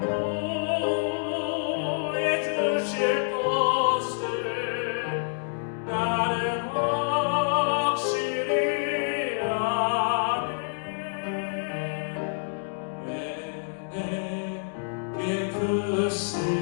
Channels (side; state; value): right; silent; digital silence